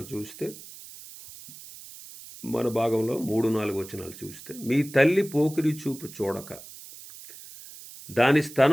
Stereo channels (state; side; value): noise; right; hiss, 16 dB below the sound